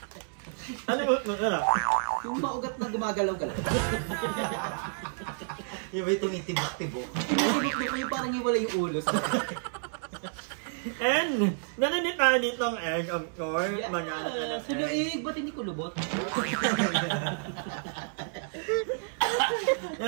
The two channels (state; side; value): silent; left; digital silence